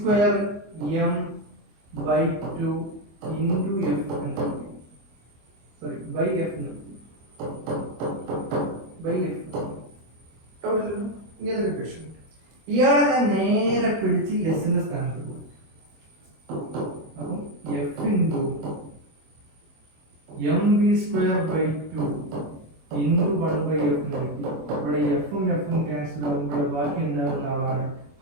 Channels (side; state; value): left; late; 25 ms